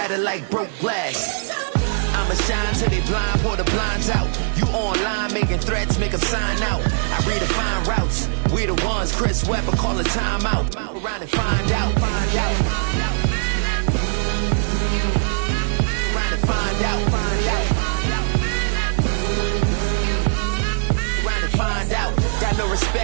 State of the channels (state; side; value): silent; left; digital silence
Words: like broke glass. I'ma shine till they blind, pour the blinds out. You online making threats, make 'em sign out. I redefine routes. We the ones Chris Webber call a timeout. Around and find out, find out. Around and find out, find out. Around and find out. Got no